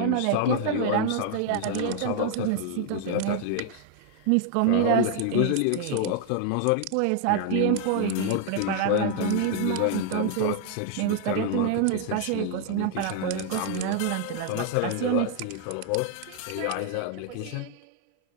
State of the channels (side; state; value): both; different; correlation 0.00